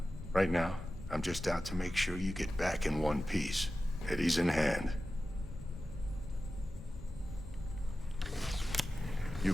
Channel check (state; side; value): normal; both; correlation 0.94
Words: Right now, I'm just out to make sure you get back in one piece. Eddie's in hand. You